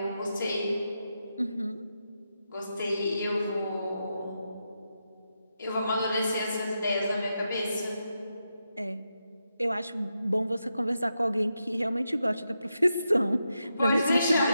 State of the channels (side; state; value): both; inverted; correlation -0.86